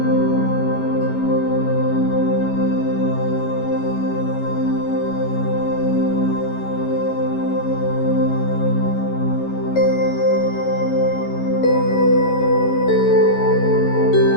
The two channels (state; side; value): late; right; 11 ms